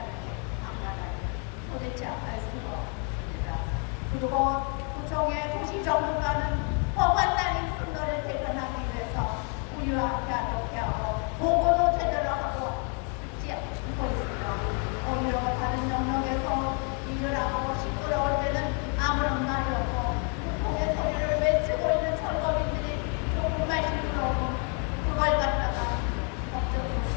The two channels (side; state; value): right; quieter; 39.1 dB